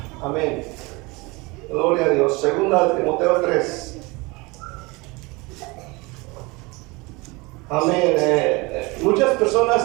Amén. Gloria a Dios. Segunda de Timoteo 3. Amén. Muchas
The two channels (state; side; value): quieter; left; 25.3 dB